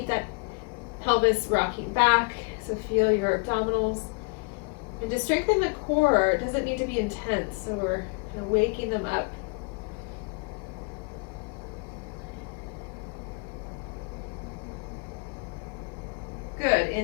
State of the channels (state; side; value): quieter; right; 33.1 dB